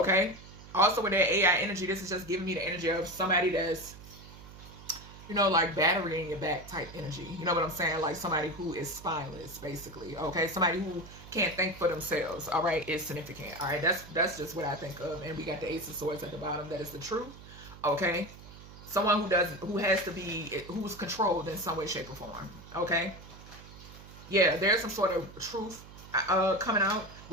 Also with that AI energy, this is just giving me the energy of somebody that's, you know, like battery in your back type energy. You know what I'm saying? Like somebody who is spineless, basically. Okay, somebody who can't think for themselves. All right, is significant. All right, that's just what I think of. And we got the Ace of Swords at the bottom. That is the truth. Okay, someone who's controlled in some way, shape, or form. Okay, yeah, there's some sort of truth coming out.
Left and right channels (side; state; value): right; noise; hum, 17 dB below the sound